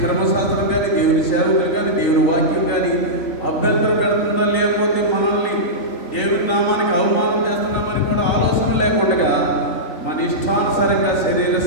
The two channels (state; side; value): late; right; 3.9 ms